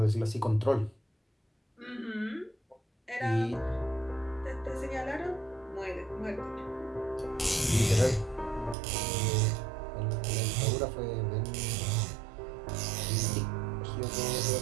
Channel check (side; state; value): left; drops out; at 8.8 s